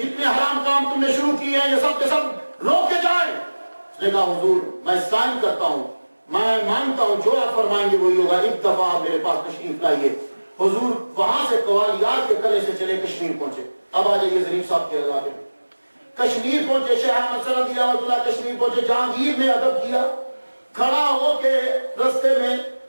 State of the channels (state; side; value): inverted; both; correlation -1.00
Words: جتنے حرام کام تم نے شروع کیے ہیں یہ سب کے سب روکے جائیں۔ اس نے کہا حضور میں سائن کرتا ہوں، میں مانتا ہوں جو آپ فرمائیں گے وہی ہوگا، ایک دفعہ آپ میرے پاس تشریف لائیے۔ حضور وہاں سے قوالیار کے قلعے سے چلے کشمیر پہنچے۔ اب آ جائیے ظریف صاحب کے علاقے میں، کشمیر پہنچے، شیخ احمد سرندی رحمۃ اللہ کشمیر پہنچے۔ جہانگیر نے ادب کیا، کھڑا ہو کے رستے میں